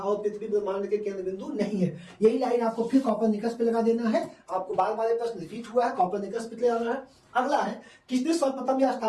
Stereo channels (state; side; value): identical; both; correlation 1.00